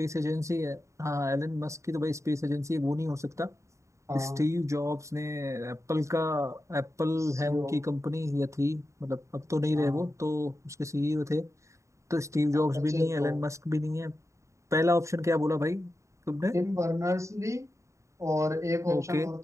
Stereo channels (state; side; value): late; left; 0.14 ms